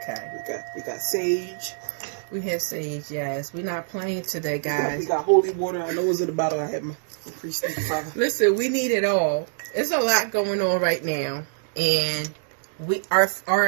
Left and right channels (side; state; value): left; silent; 62 dB below the other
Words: We got sage. We have sage, yes. We're not playing today, guys. We got holy water. I know it was in the bottle. I had my priest and father. Listen, we need it all. There's a lot going on right now, and